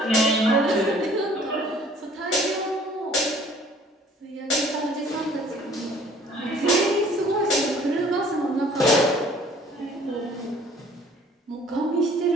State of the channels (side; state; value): both; normal; correlation 0.54